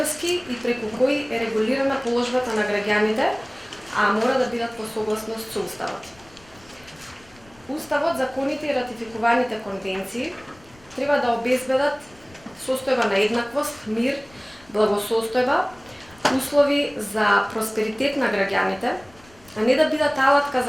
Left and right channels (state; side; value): noise; left; rumble, 27 dB below the sound